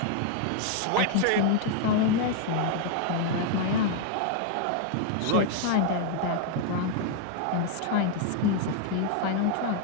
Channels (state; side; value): different; both; correlation 0.00